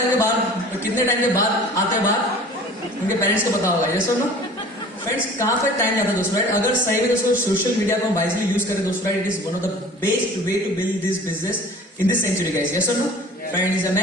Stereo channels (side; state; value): both; normal; correlation 0.44